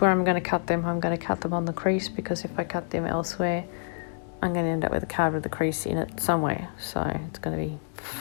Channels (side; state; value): right; silent; digital silence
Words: I'm going to cut them. I'm going to cut them on the crease, because if I cut them elsewhere, I'm going to end up with a card with a crease in it somewhere, so it's going to be